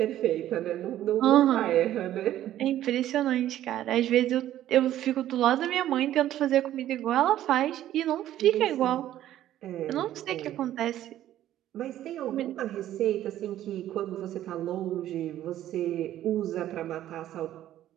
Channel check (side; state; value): left; quieter; 12.7 dB